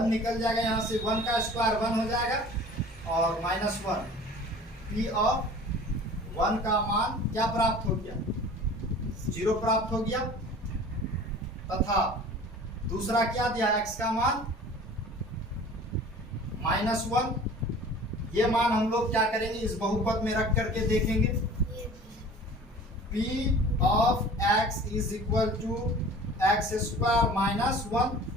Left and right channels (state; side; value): normal; both; correlation 0.44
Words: निकल जाएगा, यहाँ से 1 का स्क्वायर 1 हो जाएगा और -1, p ऑफ 1 का मान क्या प्राप्त हो गया, 0 प्राप्त हो गया, तथा दूसरा क्या दिया, x का मान -1, ये मान हम लोग क्या करेंगे, इस बहुपद में रख करके देखेंगे, p of x is equal to x square -1,